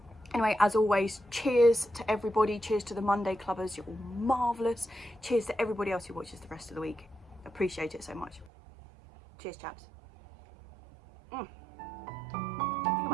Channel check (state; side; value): drops out; left; at 8.5 s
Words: Anyway, as always, cheers to everybody. Cheers to the Monday Clubbers. You're all marvellous. Cheers to everybody else who watches the rest of the week. Appreciate it so much. Cheers, chaps. I think I